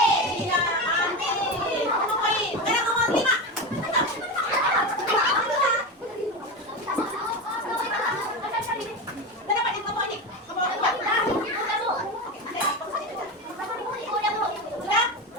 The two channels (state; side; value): normal; both; correlation 0.20